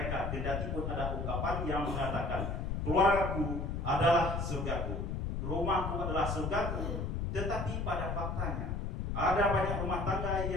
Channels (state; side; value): noise; left; rumble, 2 dB below the sound